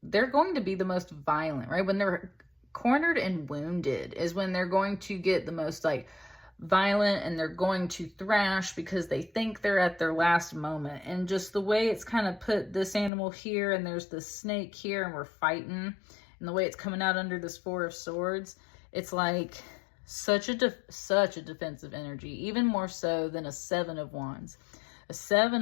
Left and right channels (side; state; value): right; drops out; at 13.1 s